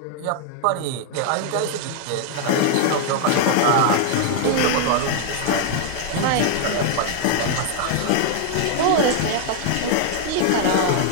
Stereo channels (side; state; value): both; different; correlation 0.00